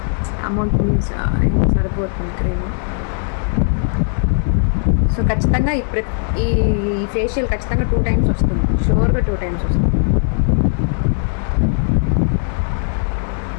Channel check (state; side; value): silent; right; 65 dB below the other